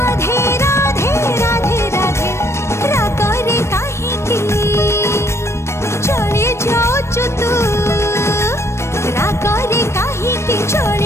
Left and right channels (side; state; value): right; late; 0.13 ms